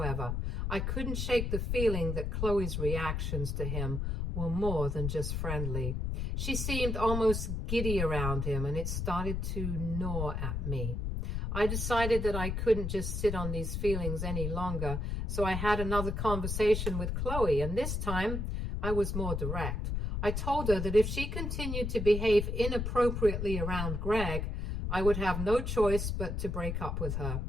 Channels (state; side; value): noise; left; rumble, 2 dB below the sound